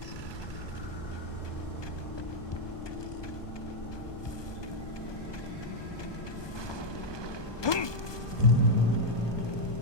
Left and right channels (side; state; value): right; late; 1.2 ms